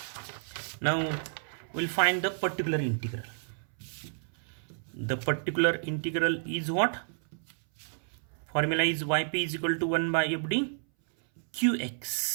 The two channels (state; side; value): silent; left; 57 dB below the other